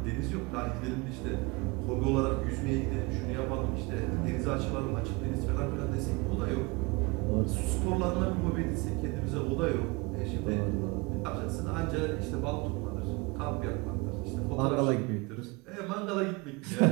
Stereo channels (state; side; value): quieter; left; 26.0 dB